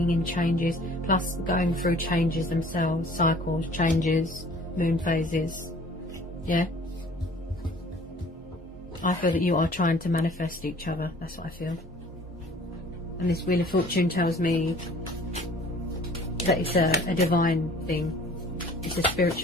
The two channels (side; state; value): both; normal; correlation 0.51